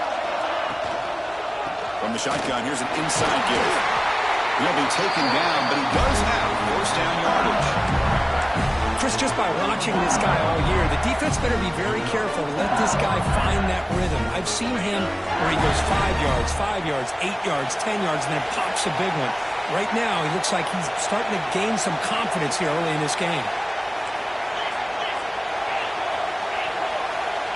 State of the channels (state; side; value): identical; both; correlation 1.00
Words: From the shotgun, here's an inside give. He'll be taken down, but he does have first down yardage. Chris, just by watching this guy all year, the defense better be very careful to let this guy find that rhythm. I've seen him where he goes 5 yards, 8 yards, 10 yards, and then pops a big one. Right now, he looks like he's starting to gain some confidence here early in this game.